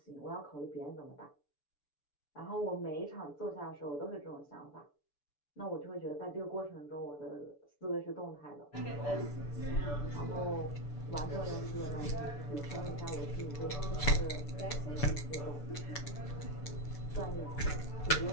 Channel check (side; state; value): right; late; 6.9 ms